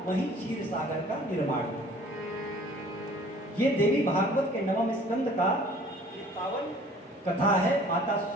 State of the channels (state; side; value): normal; both; correlation 0.51